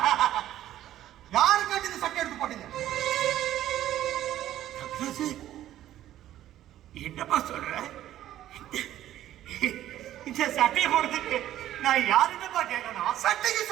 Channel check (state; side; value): quieter; left; 12.8 dB